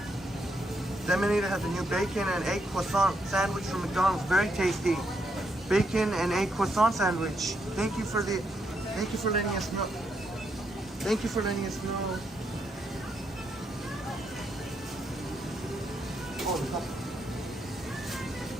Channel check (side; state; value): both; normal; correlation 0.78